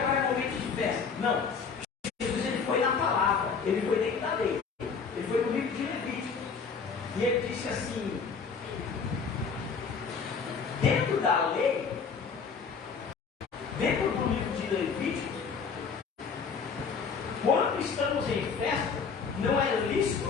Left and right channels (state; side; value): quieter; right; 5.6 dB